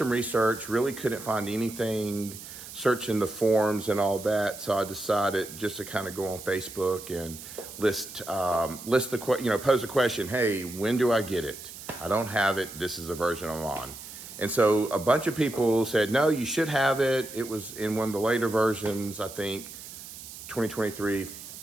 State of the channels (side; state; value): right; noise; hiss, 13 dB below the sound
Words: research, really couldn't find anything, searching the forums and all that. So I decided just to kind of go on Facebook and pose a question. Hey, when do I get it? I don't have it. This is the version I'm on. And so a bunch of people said, no, you should have it. It was in one of the later versions, I think 2023